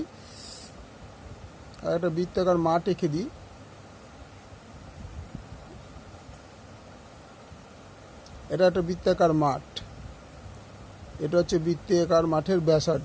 একটা বৃত্তাকার মাঠ এঁকে দিই। এটা একটা বৃত্তাকার মাঠ, এটা হচ্ছে বৃত্তাকার মাঠের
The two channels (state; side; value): identical; both; correlation 1.00